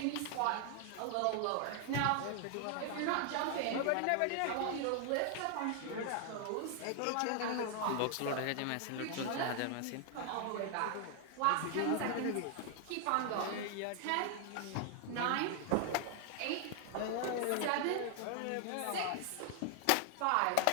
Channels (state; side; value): different; both; correlation 0.00